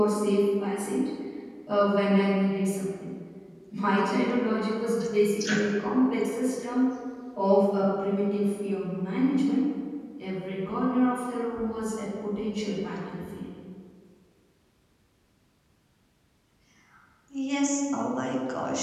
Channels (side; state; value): both; identical; correlation 1.00